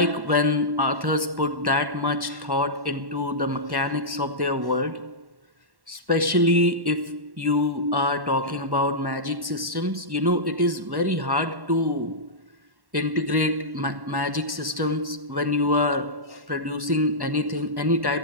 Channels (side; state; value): left; late; 1.1 ms